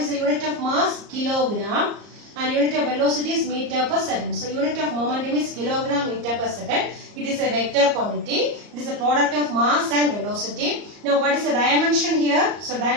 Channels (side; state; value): left; late; 34 ms